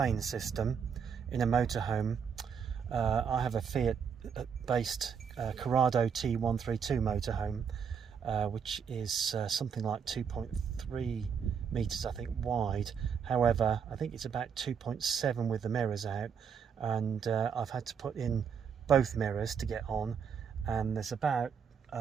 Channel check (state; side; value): quieter; left; 6.9 dB